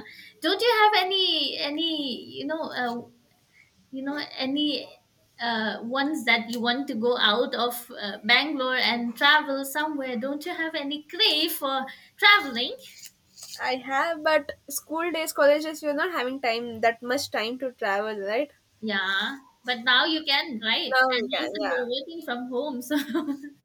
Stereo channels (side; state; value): both; identical; correlation 1.00